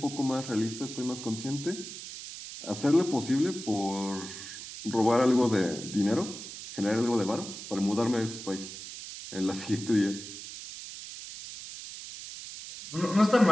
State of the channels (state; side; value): noise; right; hiss, 11 dB below the sound